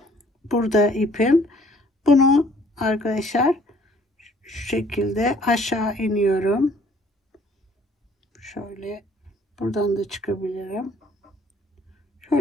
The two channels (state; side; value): normal; both; correlation 0.59